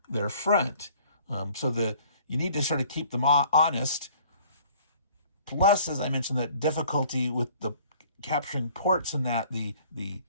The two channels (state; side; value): inverted; both; correlation -0.54